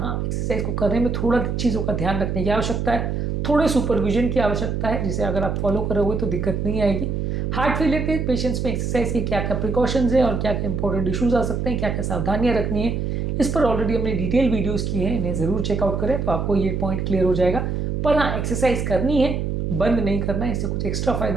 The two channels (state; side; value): noise; right; hum, 1 dB below the sound